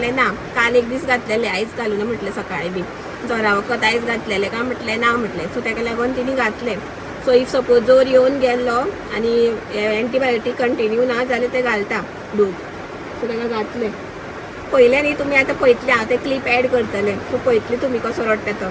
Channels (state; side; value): identical; both; correlation 1.00